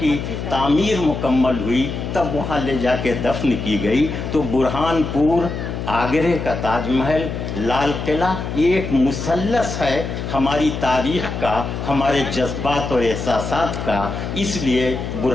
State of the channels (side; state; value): left; noise; hum, 5 dB below the sound